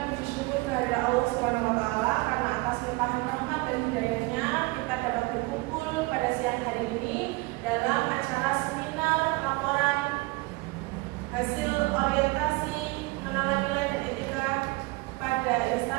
puji syukur kehadirat Allah Subhanahu wa taala karena atas limpahan rahmat dan hidayahnya kita dapat berkumpul pada siang hari ini dalam acara seminar laporan hasil orientasi pengenalan nilai dan etika pada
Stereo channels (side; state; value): left; quieter; 24.3 dB